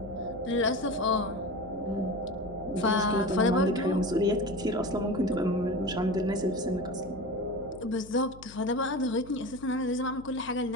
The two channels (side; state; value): left; noise; hum, 19 dB below the sound